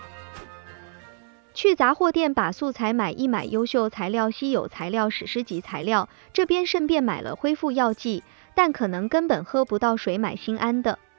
去杂货店把素材买一买，优秀材料、稀有材料、史诗级材料，这边顺便买了恢复药剂，但可能根本喝不到水，买心安的。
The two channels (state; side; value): silent; left; 62 dB below the other